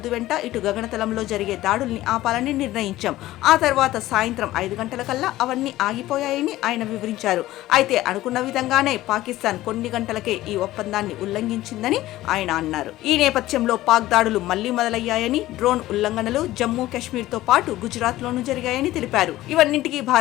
వెంట ఇటు గగనతలంలో జరిగే దాడుల్ని ఆపాలని నిర్ణయించాం. ఆ తర్వాత సాయంత్రం 5 గంటలకల్లా అవన్నీ ఆగిపోయాయని ఆయన వివరించారు. అయితే అనుకున్న విధంగానే పాకిస్తాన్ కొన్ని గంటలకే ఈ ఒప్పందాన్ని ఉల్లంఘించిందని ఆయన అన్నారు. ఈ నేపథ్యంలో పాక్ దాడులు మళ్లీ మొదలయ్యాయని, డ్రోన్ ఉల్లంఘనలు జమ్మూ కాశ్మీర్ తో పాటు గుజరాత్ లోనూ జరిగాయని తెలిపారు. ఇవన్నింటికీ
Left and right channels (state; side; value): quieter; right; 15.9 dB